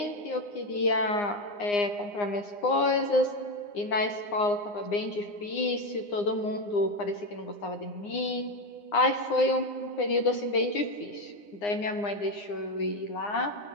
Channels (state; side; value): late; right; 9.7 ms